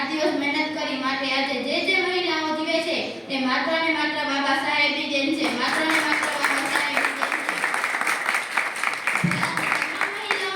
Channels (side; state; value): both; identical; correlation 1.00